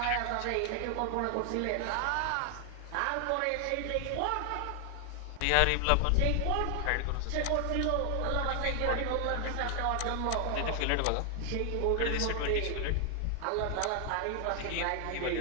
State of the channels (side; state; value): both; different; correlation 0.00